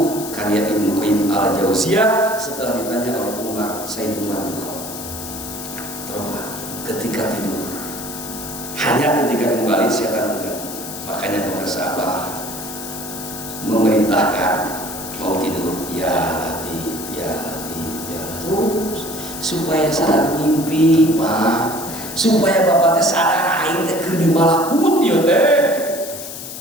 karya Ibnu Qayyim al-Jauziyah setelah ditanya oleh Sayyid Umar bin Khattab. Coba ketika tidur, hanya ketika kembali setan enggak. Makanya pemirsa Abah memerintahkan mau tidur, ya Latif, ya Latif, ya terus supaya sadar mimpi, Pak. Supaya bapak teh sadar aing teh keur di malakut ieu teh.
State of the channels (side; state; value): left; noise; hiss, 10 dB below the sound